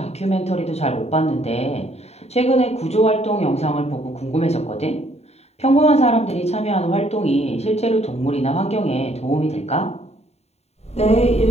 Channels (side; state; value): right; late; 0.31 ms